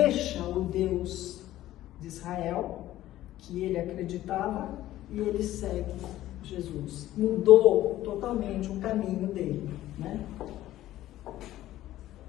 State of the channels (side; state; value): right; quieter; 14.4 dB